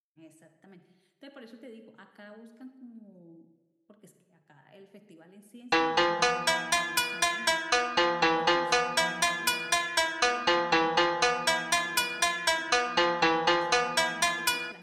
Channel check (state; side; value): identical; both; correlation 1.00